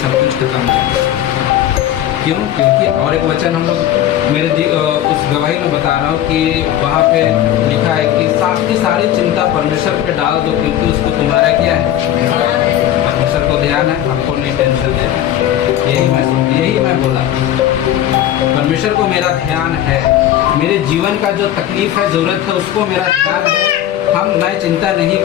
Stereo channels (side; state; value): right; quieter; 11.8 dB